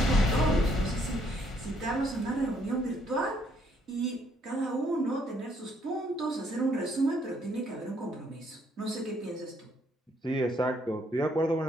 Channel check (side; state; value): both; normal; correlation 0.69